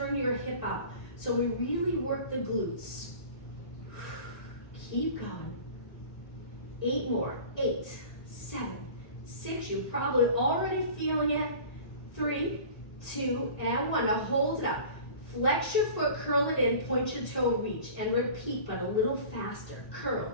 your hip out. So we really work the glutes. Keep going. 8 more. 8, 7, 6. You're probably already feeling it. 3, 2, and 1. Now hold it up. Flex your foot, curl it in, point your toe, reach, and repeat, but a little faster. Curl,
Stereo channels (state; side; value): late; right; 1.8 ms